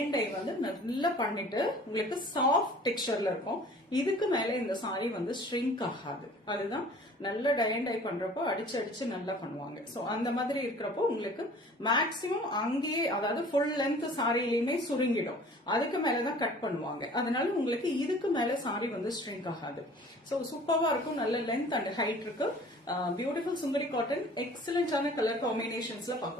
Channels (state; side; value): normal; both; correlation 0.48